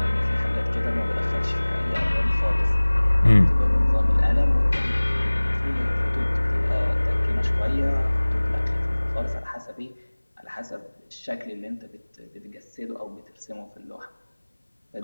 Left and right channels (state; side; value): inverted; both; correlation -1.00